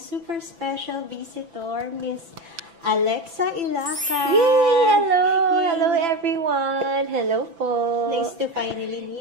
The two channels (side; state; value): left; late; 6.0 ms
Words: super special visitor, Miss Alexa Ilacad. Yay! Hello! Yay. Hello, everyone! Hello po! Nice to finally